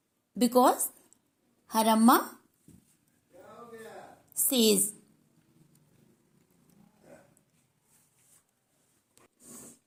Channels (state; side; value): identical; both; correlation 1.00